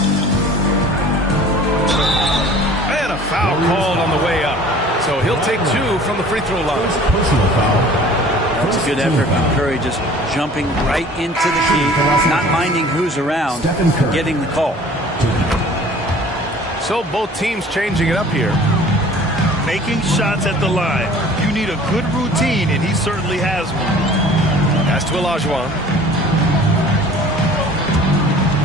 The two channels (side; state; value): both; normal; correlation 0.48